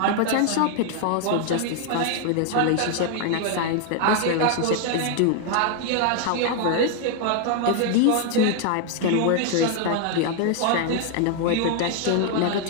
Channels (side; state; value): both; different; correlation 0.00